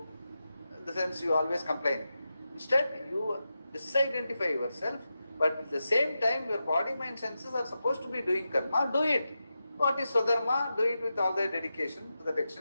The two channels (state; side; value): inverted; both; correlation -0.90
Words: in the sense you always complain. Instead, you disidentify yourself, but at the same time, your body, mind, senses are supposed to be doing karma. Do it. What is Swadharma? Do it with all the dedication to that